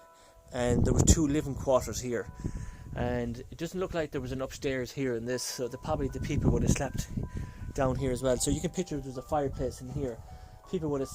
and there were two living quarters here. And it doesn't look like there was an upstairs here in this, so probably the people would have slept down here as well. So you can picture there's a fireplace in here. People would have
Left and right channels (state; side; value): identical; both; correlation 1.00